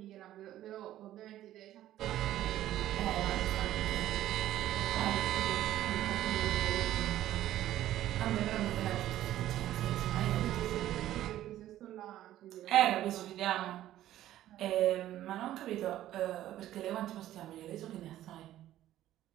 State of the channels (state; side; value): quieter; left; 13.3 dB